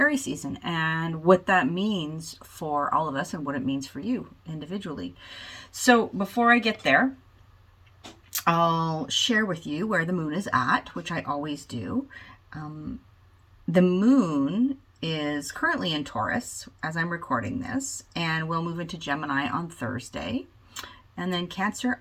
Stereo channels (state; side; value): identical; both; correlation 1.00